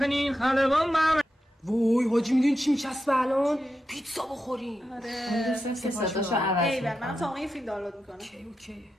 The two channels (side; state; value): both; normal; correlation 0.88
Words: خلبان من. وای حاجی میدونی چی میچسبه الان؟ پیتزا بخوریم. اون دوستم که صداشو عوض میکنه. من تا این فیلم دانلود میکنم. اوکی.